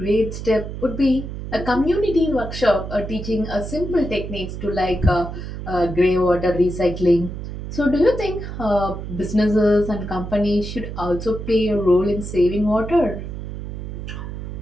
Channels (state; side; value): noise; right; hum, 8 dB below the sound